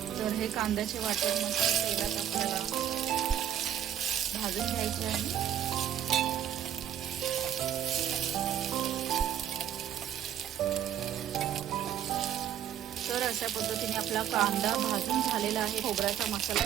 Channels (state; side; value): quieter; left; 10.3 dB